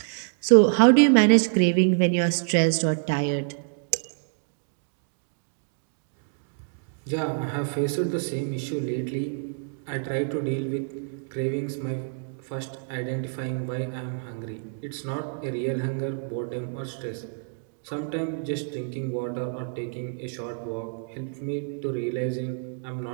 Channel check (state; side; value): silent; left; digital silence